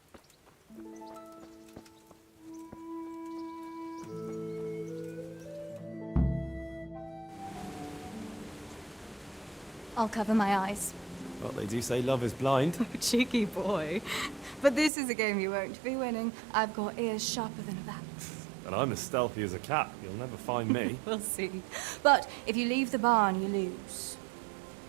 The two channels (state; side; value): drops out; left; at 14.9 s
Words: I'll cover my eyes. Well, they do say love is blind. Cheeky boy. But this is a game you won't be winning. I've got ears sharper than a bat. And I'm as stealthy as a cat. You'll never find me. We'll see. But if you leave the barn, you lose.